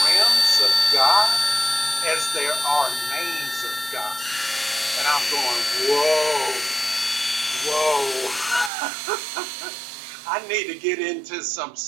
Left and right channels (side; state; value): left; drops out; at 8.7 s